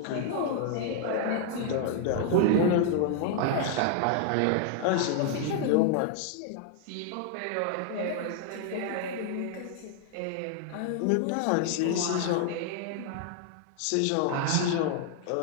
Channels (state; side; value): different; both; correlation 0.00